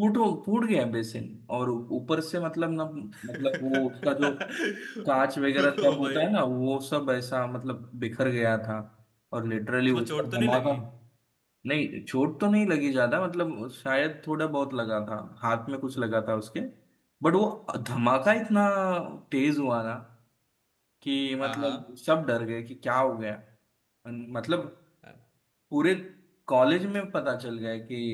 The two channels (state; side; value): identical; both; correlation 1.00